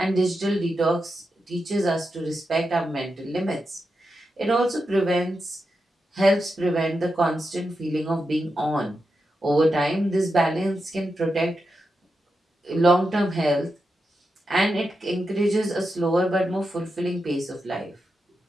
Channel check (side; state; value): both; normal; correlation 0.88